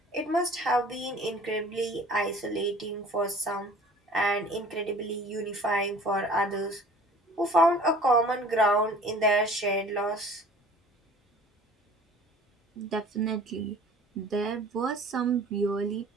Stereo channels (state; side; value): normal; both; correlation 0.48